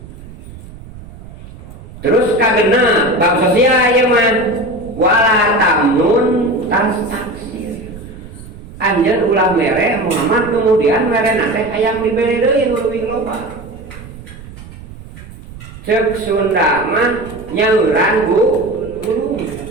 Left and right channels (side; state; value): right; noise; rumble, 16 dB below the sound